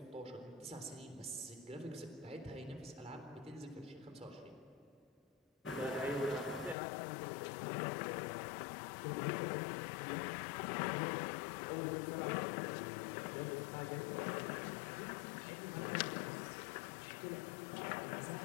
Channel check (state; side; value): drops out; right; at 6.8 s